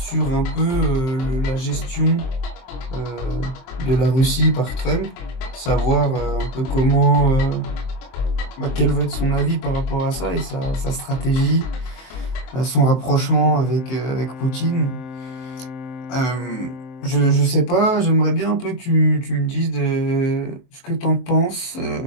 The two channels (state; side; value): late; right; 23 ms